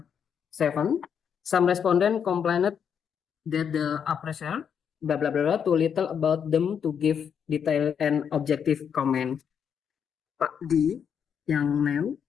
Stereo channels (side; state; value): right; quieter; 7.6 dB